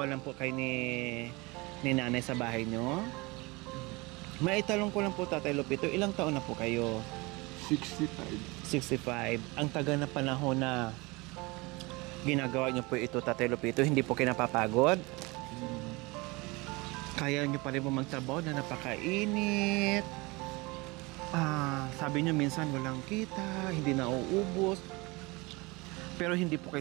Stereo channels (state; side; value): quieter; left; 24.7 dB